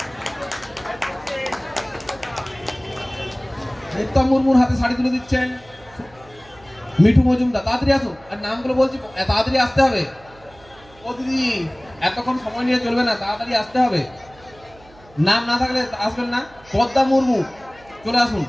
উত্তম মুর্মুর হাতে শাড়ি তুলে দিচ্ছেন মিঠু মজুমদার। তাড়াতাড়ি আসুন, আর নামগুলো বলছি তাড়াতাড়ি আসতে হবে। ও দিদি এতক্ষণ সময় নিয়ে চলবে না, তাড়াতাড়ি আসতে হবে। নাম না থাকলে আসবেন না। পদ্মা মুর্মু চলে আসুন,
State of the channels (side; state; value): right; noise; hum, 25 dB below the sound